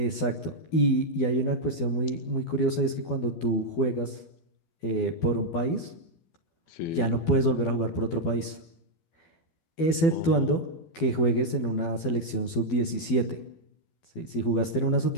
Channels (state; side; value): late; right; 12 ms